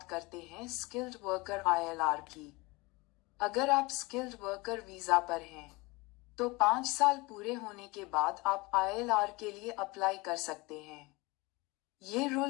करते हैं स्किल्ड वर्कर आईएलआर की। अगर आप स्किल्ड वर्कर वीजा पर हैं, तो 5 साल पूरे होने के बाद आप आईएलआर के लिए अप्लाई कर सकते हैं। ये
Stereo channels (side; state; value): right; quieter; 24.2 dB